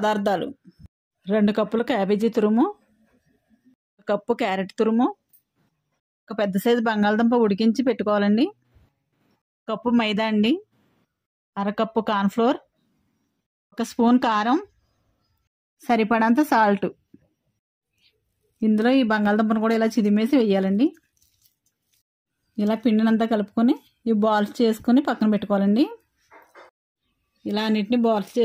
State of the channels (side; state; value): both; identical; correlation 1.00